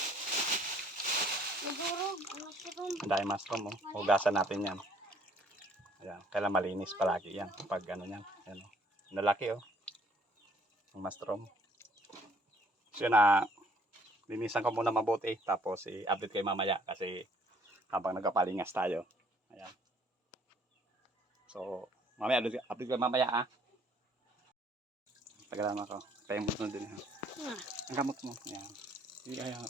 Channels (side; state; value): both; normal; correlation 0.61